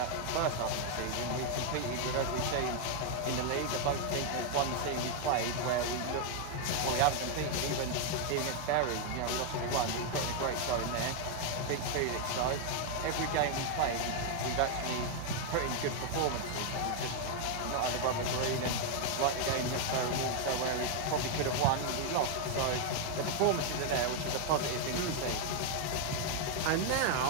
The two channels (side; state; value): both; different; correlation 0.00